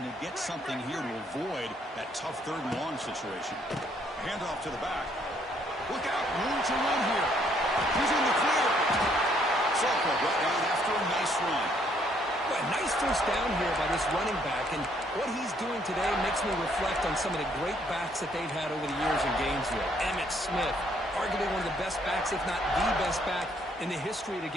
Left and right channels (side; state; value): both; normal; correlation 0.67